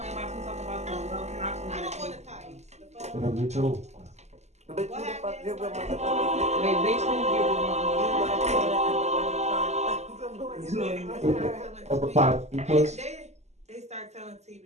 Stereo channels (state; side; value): late; left; 0.33 ms